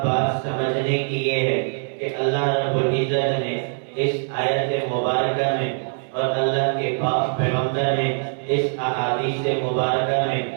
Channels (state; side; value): silent; left; 64 dB below the other